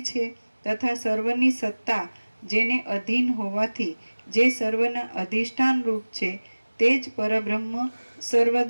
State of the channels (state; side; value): inverted; both; correlation -1.00